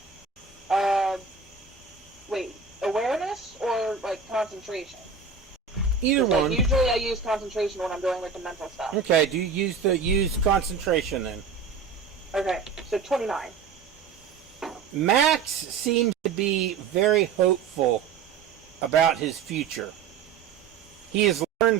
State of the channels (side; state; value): left; quieter; 5.9 dB